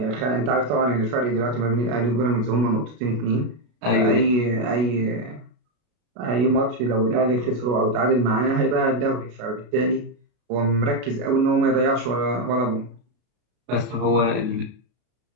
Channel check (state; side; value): late; left; 33 ms